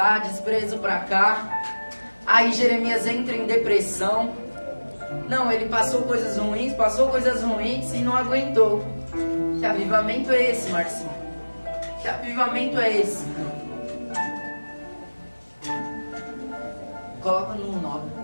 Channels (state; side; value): inverted; both; correlation -1.00